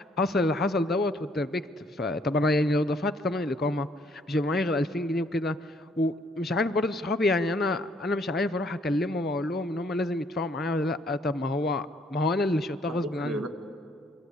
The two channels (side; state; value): both; normal; correlation 0.65